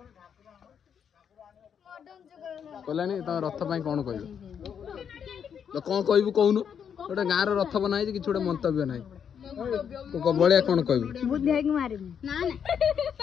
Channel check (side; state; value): right; quieter; 7.8 dB